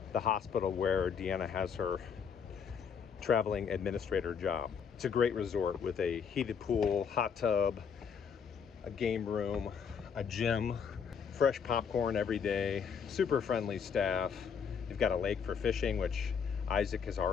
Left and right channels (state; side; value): quieter; right; 6.8 dB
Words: the hospital where Deanna has her traveling administrator job. It's a great resort with a heated pool, hot tub, a game room, a gym, fresh popcorn every day, super friendly staff. You've got a lake for fishing, which Isaac has